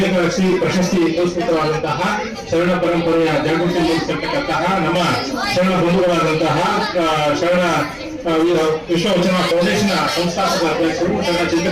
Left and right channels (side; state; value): both; identical; correlation 1.00